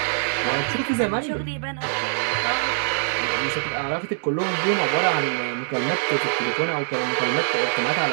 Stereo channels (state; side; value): silent; left; digital silence